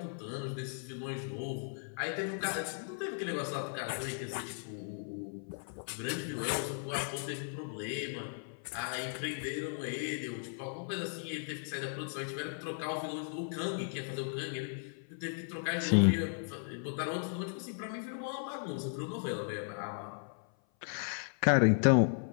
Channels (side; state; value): right; silent; 54 dB below the other